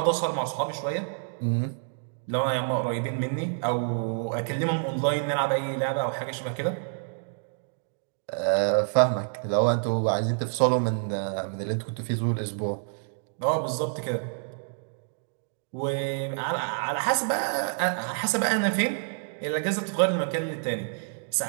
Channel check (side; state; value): left; silent; digital silence